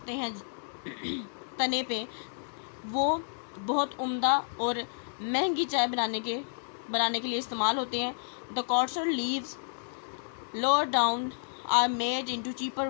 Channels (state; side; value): silent; right; digital silence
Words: हैं तने पे, वो बहुत उम्दा और महंगी चाय बनाने के लिए इस्तेमाल होते हैं. The coarser leaves lower down are made into cheaper